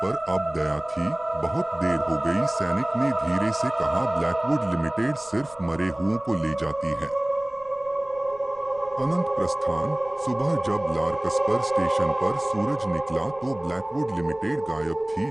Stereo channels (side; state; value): right; noise; rumble, 25 dB below the sound